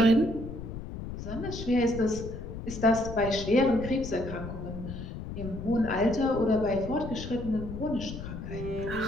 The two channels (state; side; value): noise; left; rumble, 8 dB below the sound